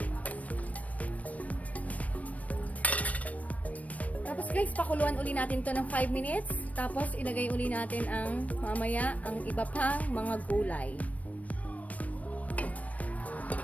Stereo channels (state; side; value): late; right; 0.069 ms